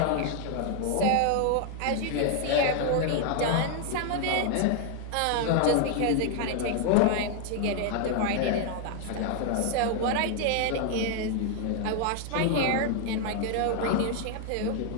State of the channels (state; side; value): different; both; correlation 0.00